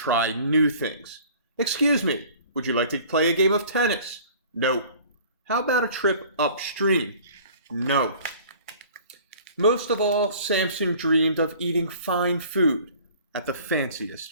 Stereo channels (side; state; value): both; inverted; correlation -0.49